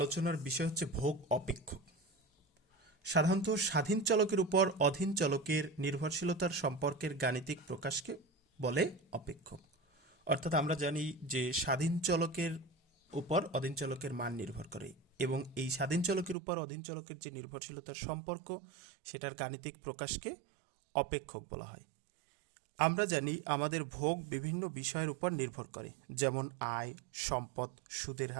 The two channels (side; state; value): left; drops out; at 16.4 s